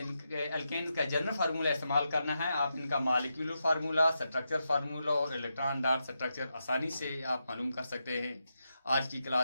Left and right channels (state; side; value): inverted; both; correlation -0.86